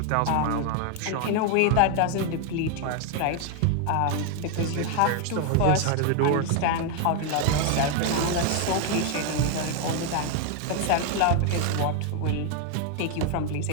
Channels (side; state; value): both; different; correlation 0.01